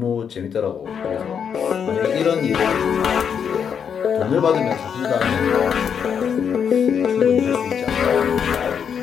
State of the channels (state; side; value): quieter; right; 7.4 dB